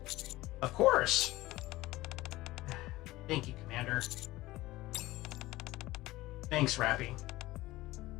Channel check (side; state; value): right; quieter; 18.1 dB